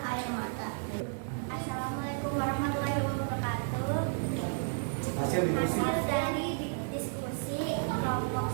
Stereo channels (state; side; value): silent; left; 56 dB below the other